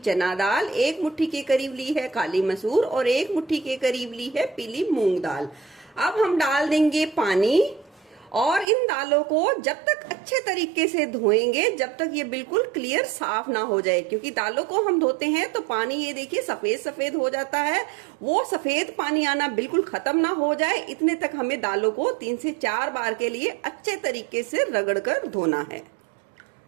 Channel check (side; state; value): left; drops out; at 8.7 s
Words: चना दाल, 1 मुट्ठी के करीब ली है काली मसूर और 1 मुट्ठी के करीब ली है पीली मूंग दाल। अब हम डाल देंगे पानी और इन दालों को जब तक अच्छे तरीके से धोएंगे जब तक ये बिल्कुल क्लियर साफ ना हो जाए, क्योंकि दालों को हम धोते हैं तो पानी ये देखिए सफेद सफेद हो जाता है। वो सफेद पानी आना बिल्कुल खत्म ना हो जाए इतने तक हमें दालों को 3 से 4 बार के लिए अच्छे तरीके से रगड़कर धोना है।